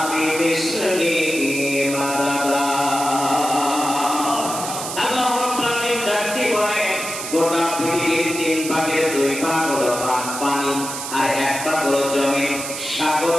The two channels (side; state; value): right; noise; hiss, 6 dB below the sound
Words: বিমিসলিহি মাদাদা। আল্লাহ রাব্বুল আলামিন ডাকতে বলেন গোটা পৃথিবীর 3 ভাগের 2 ভাগ হলো পানি আর 1 ভাগ হলো জমি। সাগর